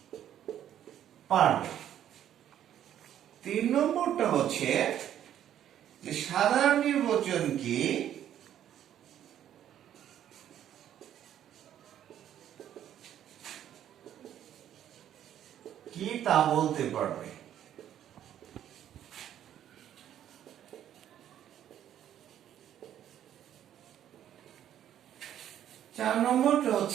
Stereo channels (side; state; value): left; quieter; 10.8 dB